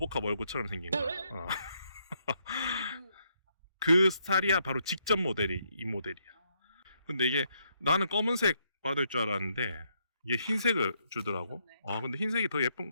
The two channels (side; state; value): both; inverted; correlation -0.75